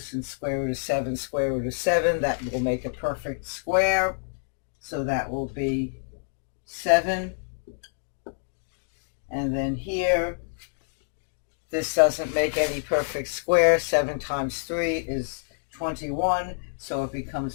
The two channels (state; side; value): silent; right; digital silence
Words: square root of 7, square root of 7, that will make a perfect square. So that will be 7. And then here, this doesn't make any perfect square. 7 times 3 is 21. So it